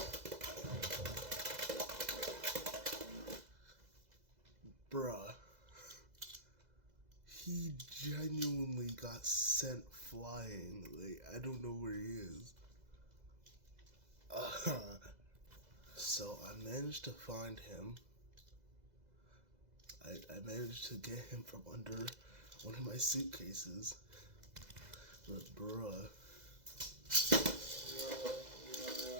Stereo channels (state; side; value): late; left; 2.0 ms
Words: Bruh. He genuinely got sent flying. Like, I don't know where he is. So I managed to find him. I managed to get him from under one of my suitcases. But bruh.